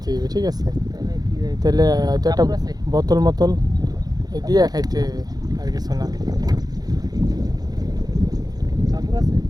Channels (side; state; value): left; late; 0.19 ms